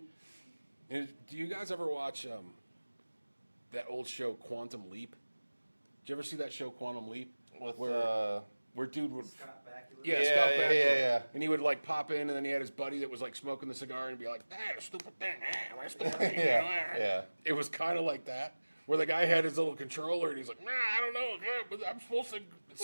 And do you guys ever watch that old show Quantum Leap? Did you ever see that show Quantum Leap? Where dude would Scott Bakula. Scott Bakula. Yeah. And he would like pop in, and then he had his buddy that was like smoking the cigar and be like, "That stupid thing, stupid thing." Yeah. It was kind of like that, where the guy had his little controller and he's like, nah, I don't know, but I'm supposed to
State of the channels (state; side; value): inverted; both; correlation -1.00